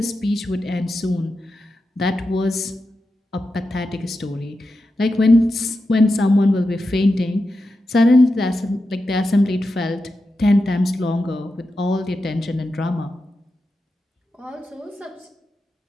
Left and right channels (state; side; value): normal; both; correlation 0.90